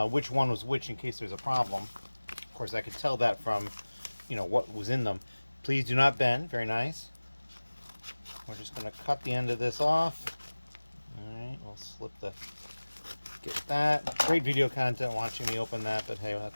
which one was which in case there's a problem. Of course, I could tell that from, what was in them. Please do not bend. Very nice. We're just going to cut the end of this off. All right, we'll get that. Great video content watching me open that, but hey,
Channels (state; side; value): inverted; both; correlation -1.00